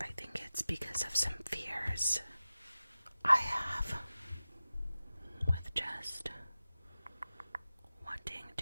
think it's because of some fears I have with just wanting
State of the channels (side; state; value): both; inverted; correlation -0.95